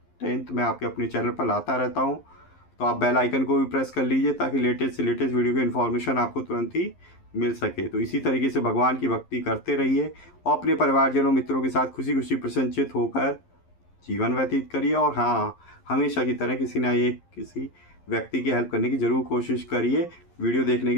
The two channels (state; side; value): late; right; 11 ms